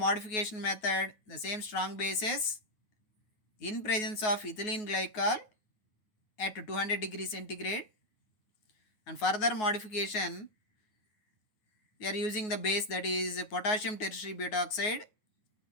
method the same strong bases in presence of ethylene glycol at 200 degrees centigrade. And further modification, we are using the base, that is potassium tertiary butoxide,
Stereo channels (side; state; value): right; late; 9.4 ms